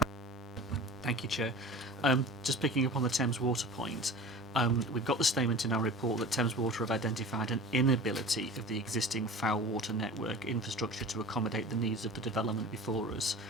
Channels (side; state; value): both; normal; correlation 0.37